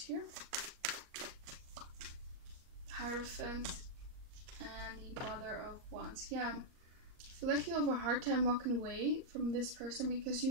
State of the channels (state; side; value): late; left; 38 ms